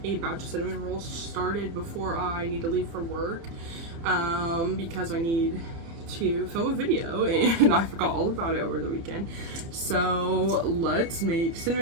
a batch of cinnamon rolls started before I need to leave for work because I need to film a video and I forgot all about it over the weekend. So let's make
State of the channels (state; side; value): late; left; 30 ms